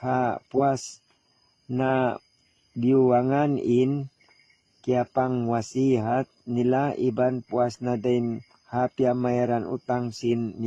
ha puas na biwangan in kaya pang wasihat nila, iban puas na din hapya mayran utang sin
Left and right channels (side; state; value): both; identical; correlation 1.00